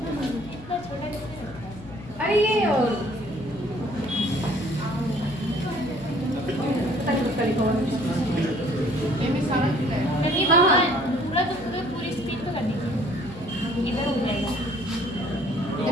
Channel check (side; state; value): left; noise; hum, 17 dB below the sound